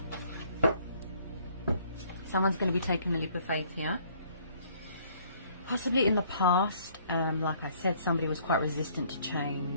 Someone's going to be taking a leap of faith here. Possibly in the past, like I said, somebody was quite resistant to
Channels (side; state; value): both; inverted; correlation -0.61